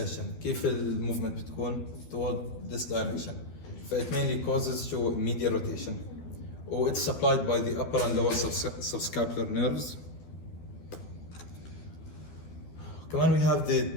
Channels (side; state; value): right; late; 12 ms